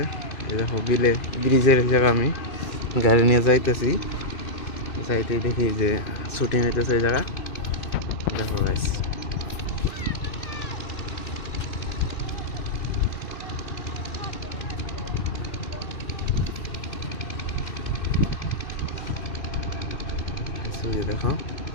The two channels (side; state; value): right; late; 2.6 ms